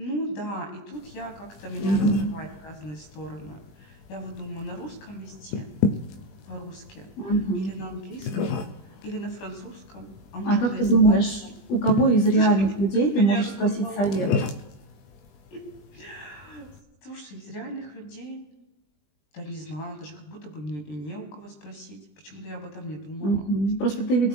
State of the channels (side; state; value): right; late; 20 ms